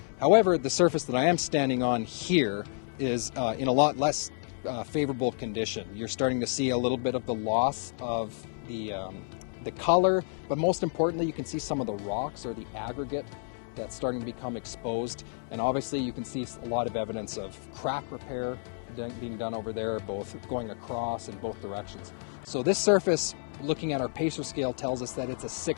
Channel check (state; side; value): silent; right; 58 dB below the other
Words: However, the surface that I am standing on here is in a lot less favorable condition. You're starting to see a little bit of the loss of the color, but most importantly, you can see some of the rocks or the aggregate that's starting to become exposed. And obviously you can see a lot of evidence of crack repair being done over there, both going across in both directions. So this surface, looking at our PACER scale, tells us that it's a